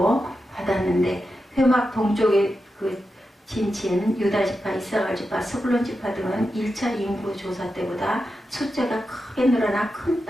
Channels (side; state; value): both; normal; correlation 0.89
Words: 받았는데 회막 동쪽의 그 진친 유다지파, 이사갈지파, 스불론지파 등은 1차 인구 조사 때보다 숫자가 크게 늘어나 큰